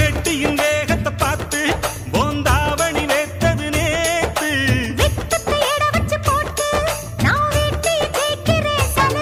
வேகத்தை பார்த்து போந்தாவணி வேத்தது நேத்து வெட்டத்தை எட வச்சு போட்டு நான் வீட்டில் கேட்கிறேன்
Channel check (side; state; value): both; identical; correlation 1.00